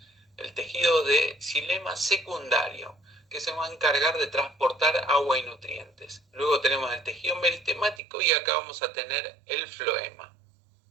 el tejido de xilema secundario, que se va a encargar de transportar agua y nutrientes. Luego tenemos el tejido meristemático y acá vamos a tener el floema.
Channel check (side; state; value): left; drops out; at 8.0 s